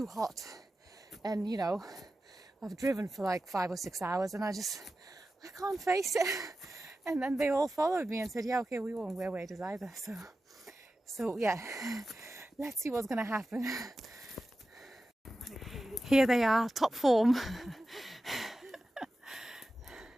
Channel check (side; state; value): both; normal; correlation 0.93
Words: hot, and you know, I've driven for like 5 or 6 hours and I can't face it. And then they all followed me and said, yeah, okay, we won't wear waders either. So yeah, let's see what's gonna happen. Here they are, top form.